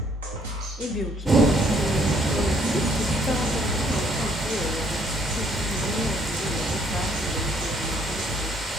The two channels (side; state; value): both; normal; correlation 0.65